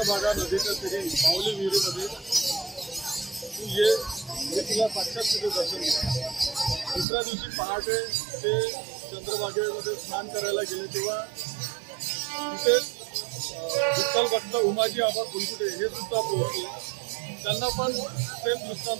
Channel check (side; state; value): left; drops out; at 7.1 s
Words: नदीच्या तीरी माऊली विहिरीमध्ये तू ये, मी तुला साक्षात तिथे दर्शन दिलं। दुसऱ्या दिवशी पहाटे ते चंद्रभागेमध्ये स्नान करायला गेले, तेव्हा तिथे विठ्ठल भक्त उमाजी आबा फुलकुटे हे सुद्धा पोहोचले। त्यांना पण सेम